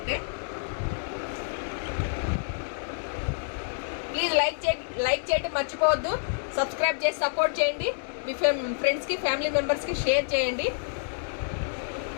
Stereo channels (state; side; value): silent; right; digital silence